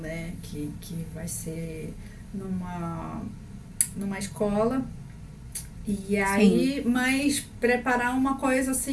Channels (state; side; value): identical; both; correlation 1.00